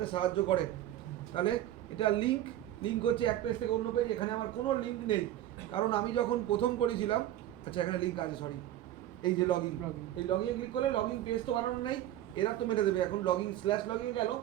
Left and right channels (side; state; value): left; quieter; 13.0 dB